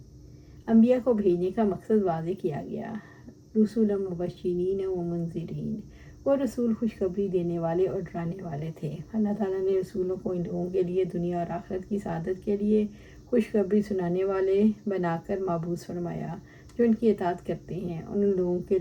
انبیاء کو بھیجنے کا مقصد واضح کیا گیا۔ رسولا مبشرین و منذرین، وہ رسول خوشخبری دینے والے اور ڈرانے والے تھے۔ اللہ تعالیٰ نے رسولوں کو ان لوگوں کے لیے دنیا اور آخرت کی سعادت کے لیے خوشخبری سنانے والے بنا کر مبعوث فرمایا، جو ان کی اطاعت کرتے ہیں، اور ان لوگوں کے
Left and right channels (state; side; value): identical; both; correlation 1.00